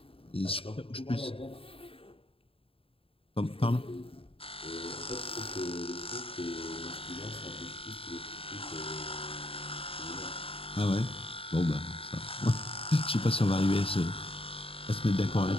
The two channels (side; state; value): right; late; 0.27 ms